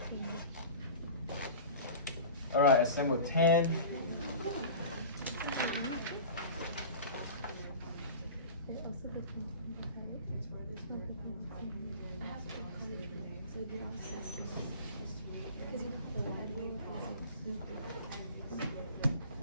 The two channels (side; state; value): both; inverted; correlation -0.37